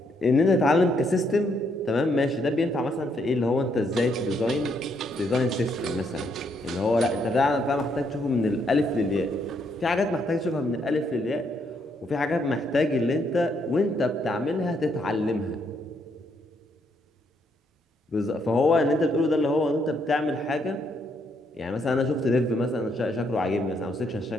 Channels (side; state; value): both; normal; correlation 0.74